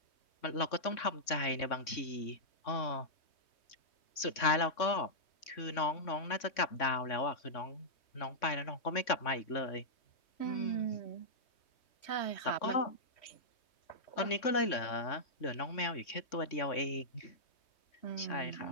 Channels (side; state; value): right; late; 3.6 ms